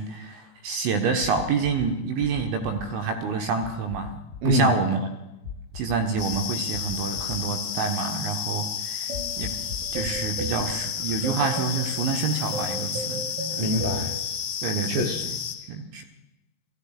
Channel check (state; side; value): late; left; 20 ms